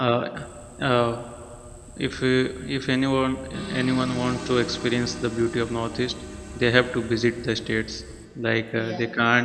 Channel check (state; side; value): identical; both; correlation 1.00